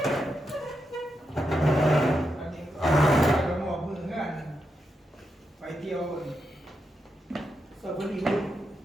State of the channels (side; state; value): both; normal; correlation 0.85